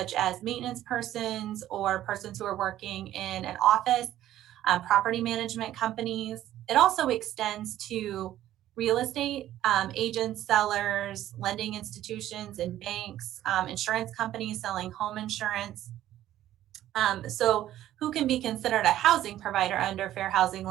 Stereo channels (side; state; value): left; quieter; 13.0 dB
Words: as maintenance persons or persons who are working in an office, property management companies. It also extends to real estate agents, sellers, lending institutions and banks, insurance companies selling home insurance. So who can be considered a housing provider under fair housing